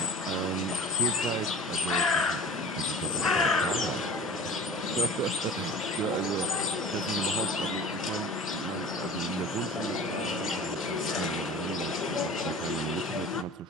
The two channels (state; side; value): normal; both; correlation 0.40